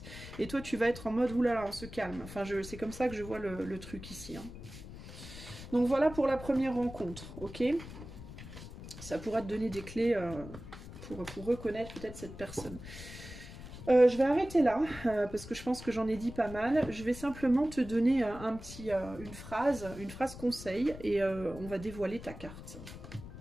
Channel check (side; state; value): left; noise; rumble, 13 dB below the sound